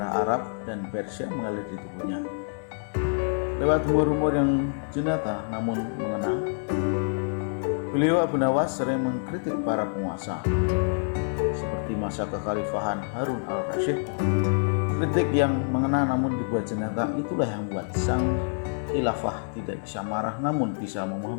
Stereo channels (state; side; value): silent; right; digital silence